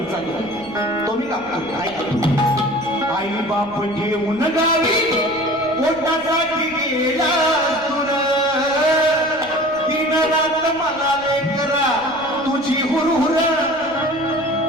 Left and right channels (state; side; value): noise; right; rumble, 22 dB below the sound